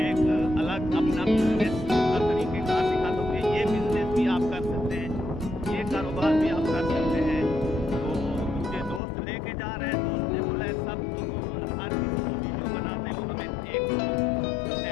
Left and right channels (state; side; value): drops out; right; at 9.0 s